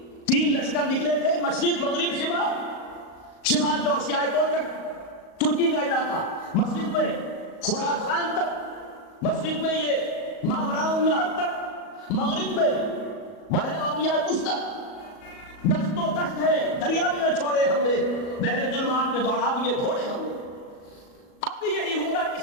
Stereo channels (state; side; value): late; right; 38 ms